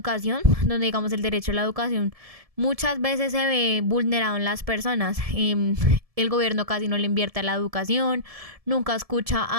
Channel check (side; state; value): left; late; 1.7 ms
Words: donde digamos el derecho a la educación muchas veces se ve vulnerado en las personas. El gobierno casi no le invierte a la educación, nunca escucha